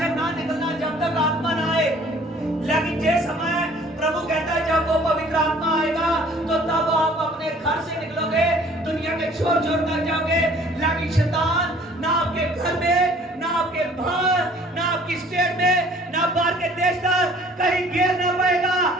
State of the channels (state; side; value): normal; both; correlation 0.54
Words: ना निकलना जब तक आत्मा ना आए। लेकिन जिस समय प्रभु कहता है जब वो पवित्र आत्मा आएगा तो तब आप अपने घर से निकलोगे, दुनिया के छोर छोर तक जाओगे। लेकिन शैतान ना आपके घर में, ना आपके बाहर, ना आपकी स्टेट में, ना बाहर के देश तक कहीं गिर ना पाएगा,